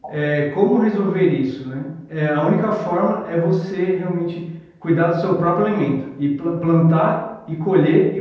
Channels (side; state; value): both; identical; correlation 1.00